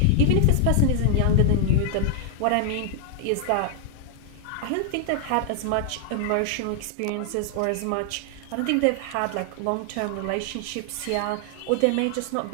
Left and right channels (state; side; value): different; both; correlation 0.00